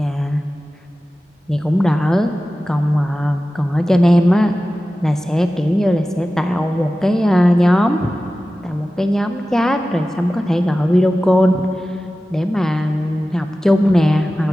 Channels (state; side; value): normal; both; correlation 0.95